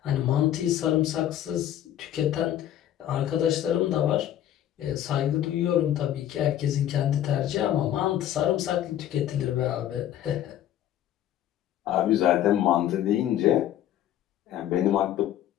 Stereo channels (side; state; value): right; quieter; 11.7 dB